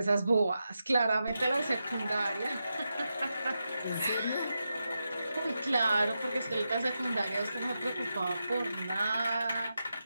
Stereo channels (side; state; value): both; inverted; correlation -0.88